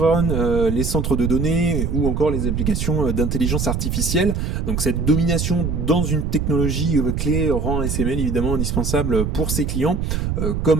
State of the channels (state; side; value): noise; right; rumble, 1 dB below the sound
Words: les centres de données ou encore les applications d'intelligence artificielle. Donc cette domination dans une technologie clé rend ASML évidemment indispensable pour ses clients,